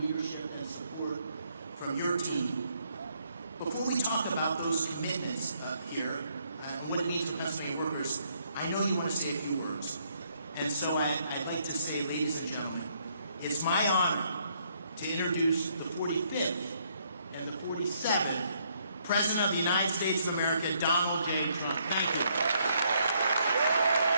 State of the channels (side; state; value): both; inverted; correlation -0.71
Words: and support from your team. Before we talk about those commitments here, and what it means for Pennsylvania workers, I know you want to say a few words. And so I'd like to say, ladies and gentlemen, it's my honor to introduce the 45th and the 47th President of the United States of America, Donald J. Trump.